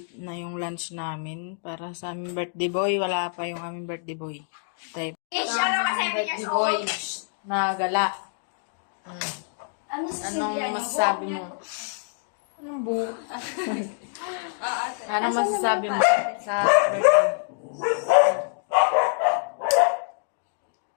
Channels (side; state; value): right; silent; digital silence